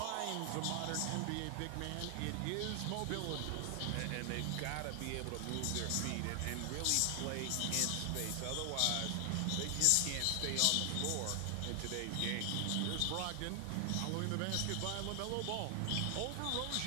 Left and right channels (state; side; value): different; both; correlation 0.00